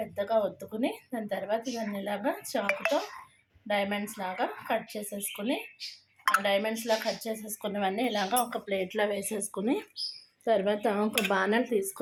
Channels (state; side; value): identical; both; correlation 1.00